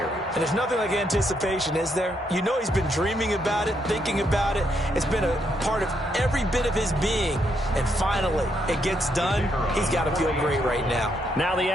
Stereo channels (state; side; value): normal; both; correlation 0.76